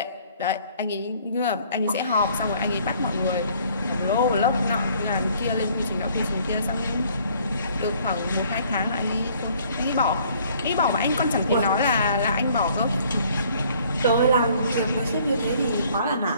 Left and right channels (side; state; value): both; inverted; correlation -0.59